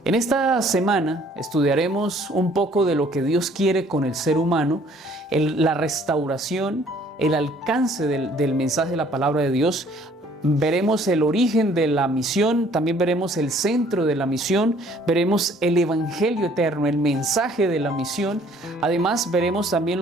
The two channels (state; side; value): normal; both; correlation 0.58